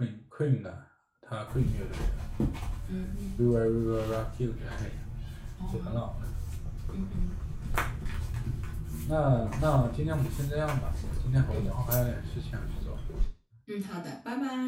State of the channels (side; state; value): both; identical; correlation 1.00